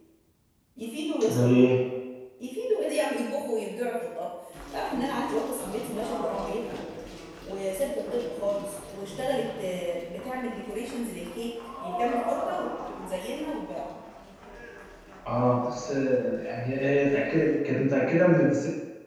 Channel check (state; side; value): identical; both; correlation 1.00